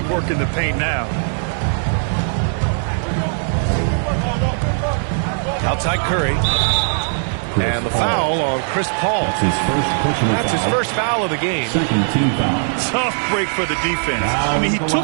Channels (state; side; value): silent; left; digital silence